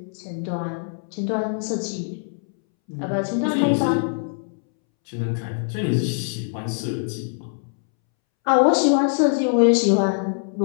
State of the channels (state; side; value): silent; right; 63 dB below the other